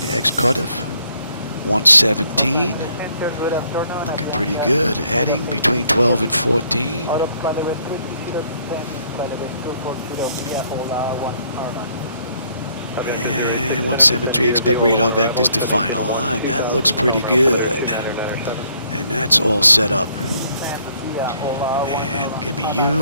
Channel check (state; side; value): inverted; both; correlation -0.67